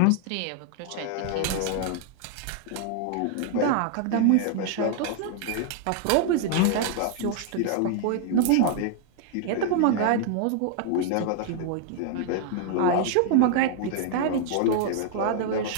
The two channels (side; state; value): both; different; correlation 0.00